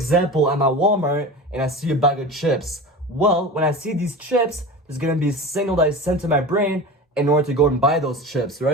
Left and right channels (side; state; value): both; normal; correlation 0.32